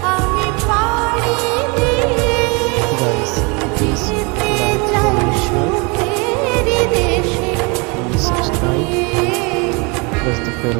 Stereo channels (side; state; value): left; quieter; 29.9 dB